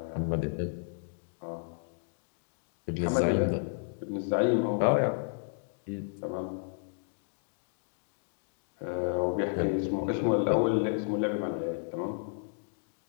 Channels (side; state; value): right; silent; digital silence